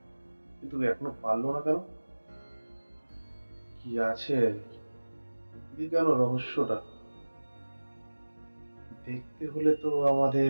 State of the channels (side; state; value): both; inverted; correlation -1.00